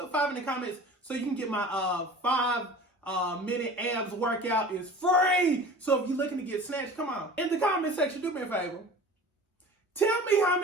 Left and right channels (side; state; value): both; normal; correlation 0.40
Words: 5 in the comments so you can get my 5-minute abs workout. Is free. So if you're looking to get snatched, come on. In the comment section, do me a favor. Tell me how